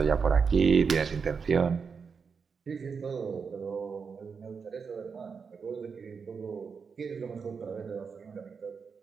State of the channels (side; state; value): left; quieter; 5.7 dB